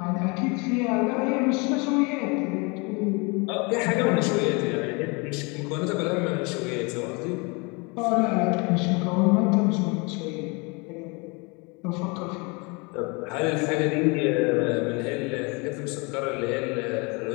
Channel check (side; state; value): right; quieter; 29.5 dB